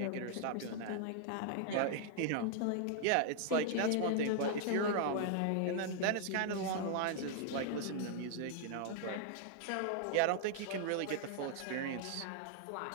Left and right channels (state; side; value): different; both; correlation 0.00